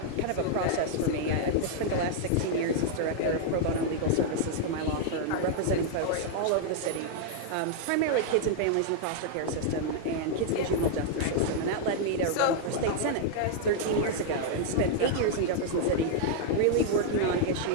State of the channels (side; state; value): both; different; correlation -0.01